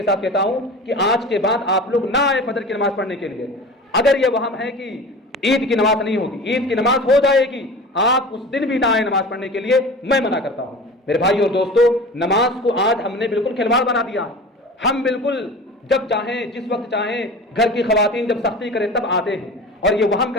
ساتھ کہتا ہوں کہ آج کے بعد آپ لوگ نہ آئے فجر کی نماز پڑھنے کے لیے۔ اگر یہ وہم ہے کہ عید کی نماز نہیں ہوگی، عید کی نماز ہو جائے گی، آپ اس دن بھی نہ آئے نماز پڑھنے کے لیے، میں منع کرتا ہوں۔ میرے بھائی اور دوستو، نماز کو آج ہم نے بالکل کھلواڑ بنا دیا۔ ہم بالکل جب چاہیں، جس وقت چاہیں، گھر کی خواتین جب سختی کریں تب آتے ہیں اور یہ وہم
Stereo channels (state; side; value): normal; both; correlation 0.36